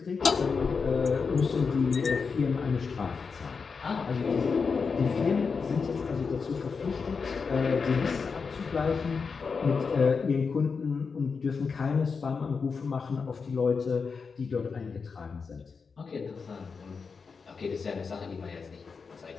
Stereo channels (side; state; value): right; quieter; 5.2 dB